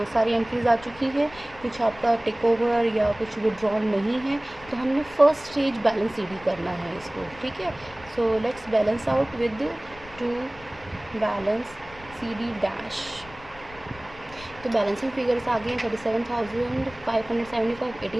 सारी एंट्रीज आ चुकी है, कुछ आपका टेक ओवर या कुछ विड्रॉल नहीं है। तो हमने फर्स्ट स्टेज बैलेंस CD करना है इसको। ठीक है, so let's balance out with two balance CD dash. तो बैलेंसिंग फिगर्स आ गए हैं 37,575,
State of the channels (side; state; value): left; noise; rumble, 20 dB below the sound